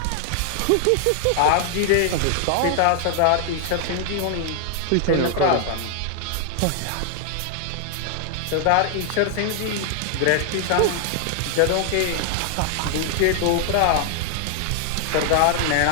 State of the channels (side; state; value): both; different; correlation 0.00